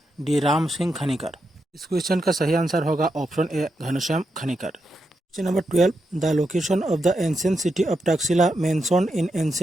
डी राम सिंह खनिकर। इस क्वेश्चन का सही आंसर होगा option A Ghanshyam Khanikar. Question number 12, the location of the ancient city of Taxila mentioned in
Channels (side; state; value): both; normal; correlation 0.85